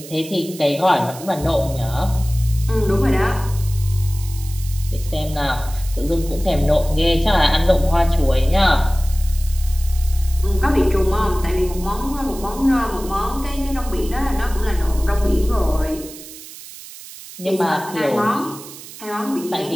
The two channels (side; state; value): right; noise; hiss, 15 dB below the sound